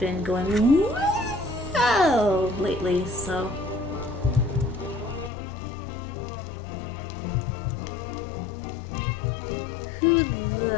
going whoa lately, so. Who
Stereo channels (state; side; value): drops out; right; at 5.3 s